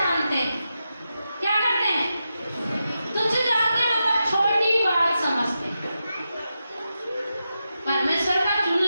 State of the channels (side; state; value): both; inverted; correlation -0.89